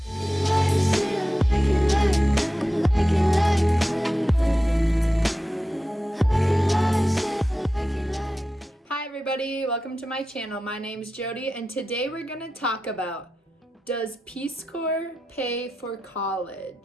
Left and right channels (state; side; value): normal; both; correlation 0.92